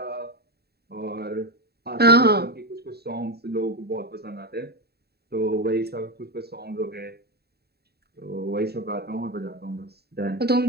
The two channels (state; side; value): late; left; 0.47 ms